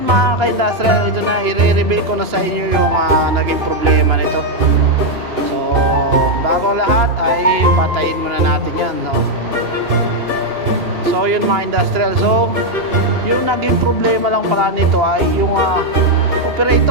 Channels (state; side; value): late; left; 2.8 ms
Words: mga ka-industrial, ito na, i-reveal ko na sa inyo yung naging problema nito. So bago lahat ay patayin muna natin yan, no? So yun mga industrial, so yung naging problema lang pala nito ay yung